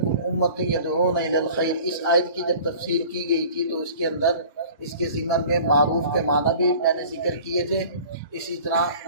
أُمَّةٌ يَدْعُونَ إِلَى الْخَيْرِ، اس آیت کی جب تفسیر کی گئی تھی تو اس کے اندر اس کے ضمن میں معروف کے معنی بھی میں نے ذکر کیے تھے۔ اسی طرح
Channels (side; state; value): both; inverted; correlation -0.45